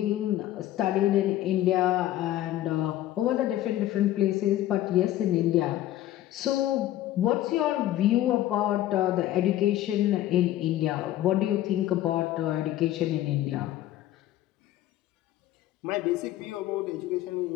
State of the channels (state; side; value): quieter; right; 13.9 dB